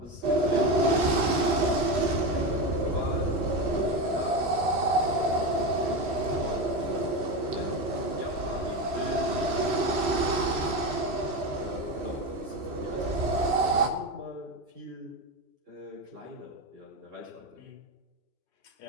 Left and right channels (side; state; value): left; late; 3.0 ms